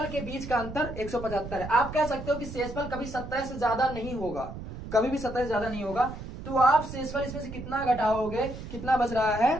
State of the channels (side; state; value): right; noise; rumble, 10 dB below the sound